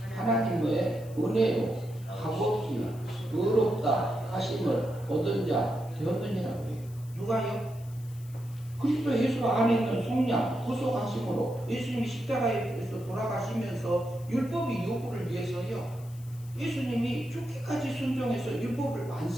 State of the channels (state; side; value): noise; left; hiss, 23 dB below the sound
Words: 하나님의 은혜로 값없이 의롭다 하심을 얻은 자 되었느니라고 해요. 누가요? 그리스도 예수 안에 있는 성령 구속하심으로 예수님이 십자가에서 돌아가시면서 율법의 요구를 위해서요, 예수님이 죽기까지 순종해서 율법을